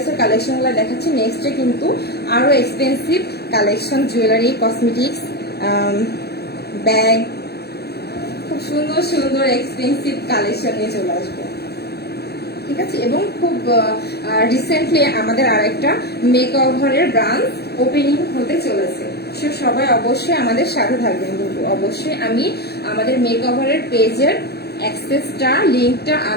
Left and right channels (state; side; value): late; right; 0.47 ms